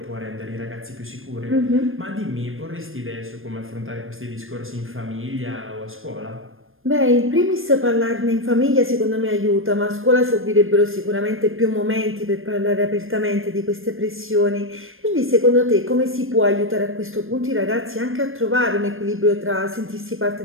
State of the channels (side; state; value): left; late; 0.60 ms